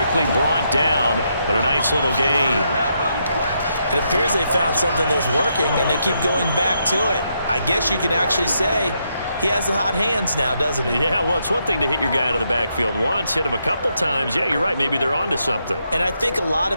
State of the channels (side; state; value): both; inverted; correlation -0.79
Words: brought down. But a nice little gain. It appears they found something that's working, and they keep going back to it. I guess you can actually say he has the hot hands now, doesn't he? Yeah, well, it's one thing to hit your guy out of the backfield once, hit him a couple times. Yeah, you're right. Maybe they're onto something. And I think a lot